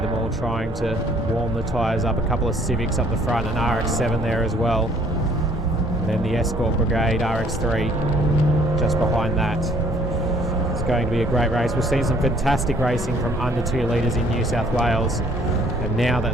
all trying to warm the tyres up. A couple of Civics up the front and RX-7 there as well. And then the Escort Brigade RX-3 just behind that. It's going to be a great race. We've seen some fantastic racing from under 2 litres in New South Wales, and now that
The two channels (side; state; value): both; normal; correlation 0.60